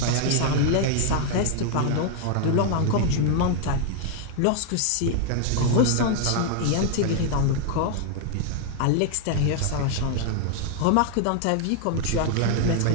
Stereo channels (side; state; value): both; different; correlation 0.00